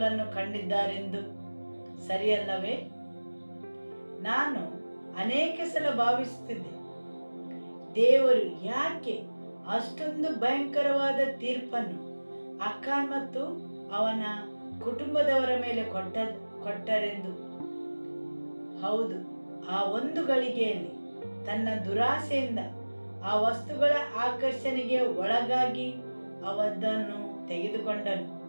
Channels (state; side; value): inverted; both; correlation -1.00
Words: ಕಂಡಿದ್ದಾರೆಂದು. ಸರಿಯಲ್ಲವೇ? ನಾನು ಅನೇಕ ಸಲ ಭಾವಿಸುತ್ತಿದ್ದೆ, ದೇವರು ಯಾಕೆ ಅಷ್ಟೊಂದು ಭಯಂಕರವಾದ ತೀರ್ಪನ್ನು ಅಖಾನ್ ಮತ್ತು ಅವನ ಕುಟುಂಬದವರ ಮೇಲೆ ಕೊಟ್ಟರೆಂದು. ಹೌದು, ಆ ಒಂದು ಗಳಿಗೆಯಲ್ಲಿ ತನ್ನ ದುರಾಸೆಯಿಂದ ಆ ವಸ್ತುಗಳ ಆಕರ್ಷಣೆಗೆ ಒಳಗಾಗಿ ಅವದನ್ನು ತೆಗೆದುಕೊಂಡನು.